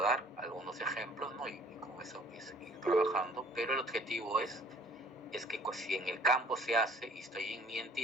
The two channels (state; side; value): normal; both; correlation 0.53